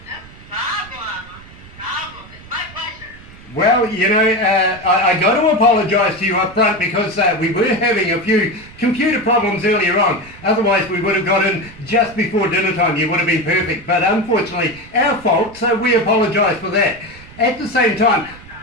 Well, you know, I got to apologise to you up front because we were having a few computer problems earlier on. Otherwise, we would have got in just before dinner time. You would have been perfect. But unfortunately, our fault, so we apologise for that. At the same time,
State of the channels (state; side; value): noise; right; rumble, 20 dB below the sound